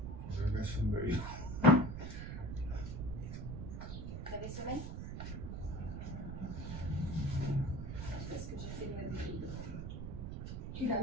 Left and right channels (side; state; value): right; noise; rumble, 5 dB below the sound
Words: Je laisse une belle. Vous avez sommeil? Je sais pas ce que j'ai fait de ma vie. Tu l'as